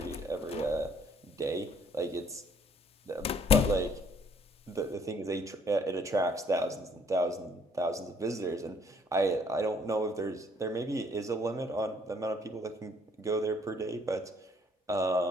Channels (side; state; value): both; normal; correlation 0.63